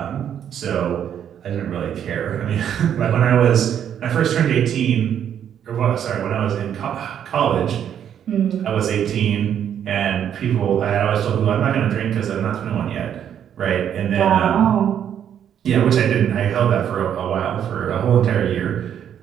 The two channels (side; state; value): left; quieter; 9.3 dB